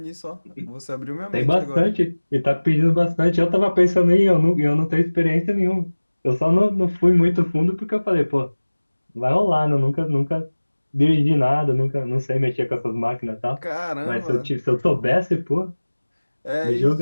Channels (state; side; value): inverted; both; correlation -1.00